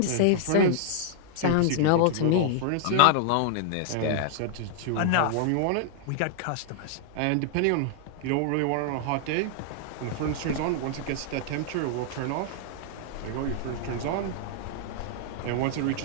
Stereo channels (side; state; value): both; different; correlation -0.01